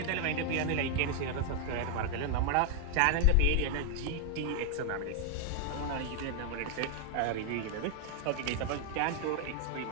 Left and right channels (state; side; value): different; both; correlation 0.00